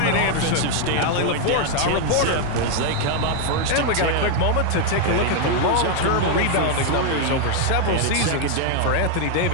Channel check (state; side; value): different; both; correlation 0.01